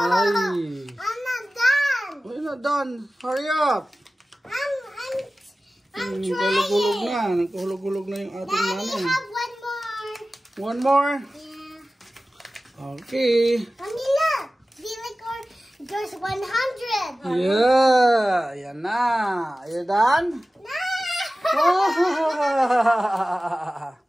I'm not done. Oh, you're not done. Hurry up. I'm trying. Hulog-hulog na. Nagkuhulog-hulog na yung ating Daddy, money. have one more. One more? Yeah. Okay. Mommy, look. There's 100. Yeah. Yan na. Are you done? No.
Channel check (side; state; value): both; normal; correlation 0.96